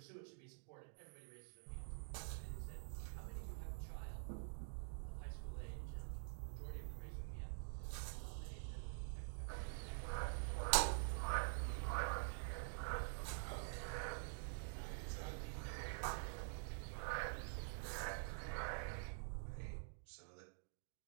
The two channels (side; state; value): left; silent; digital silence